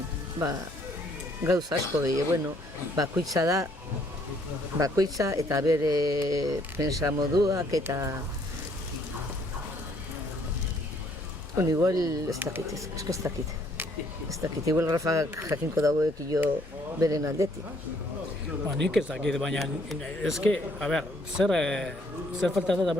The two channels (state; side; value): normal; both; correlation 0.65